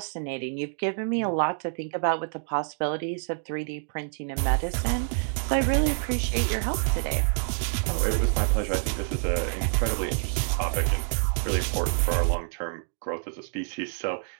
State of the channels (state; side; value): silent; left; 60 dB below the other